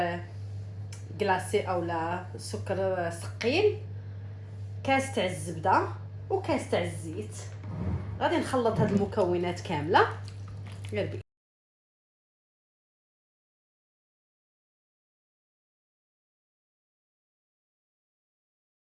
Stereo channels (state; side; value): identical; both; correlation 1.00